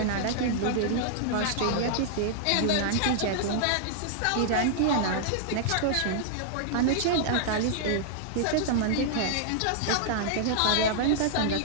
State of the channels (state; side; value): different; both; correlation -0.01